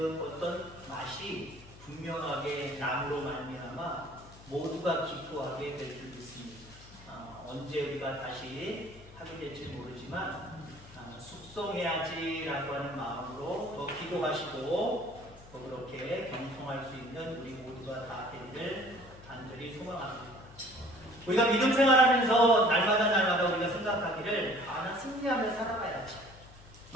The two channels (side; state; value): left; noise; hum, 21 dB below the sound